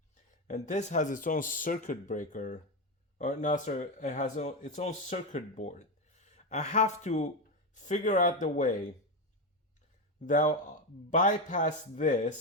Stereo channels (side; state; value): both; normal; correlation 0.12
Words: and this has its own circuit breaker, or no, sorry, it has its own circuit board. I have to figure out the way that I'll bypass